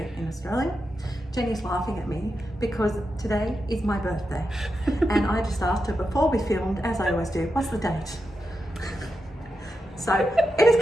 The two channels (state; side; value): normal; both; correlation 0.88